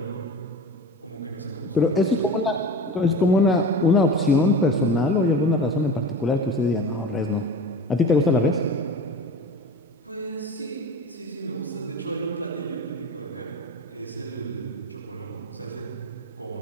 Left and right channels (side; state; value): both; normal; correlation 0.32